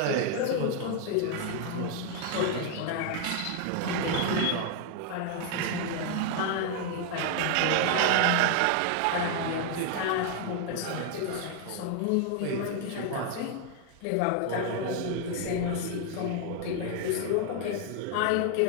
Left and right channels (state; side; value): different; both; correlation 0.00